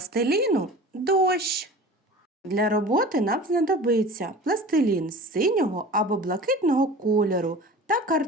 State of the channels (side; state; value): both; normal; correlation 0.38